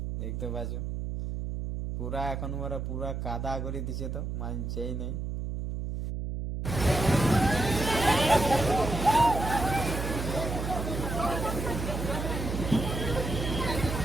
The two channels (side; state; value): right; noise; hum, 4 dB below the sound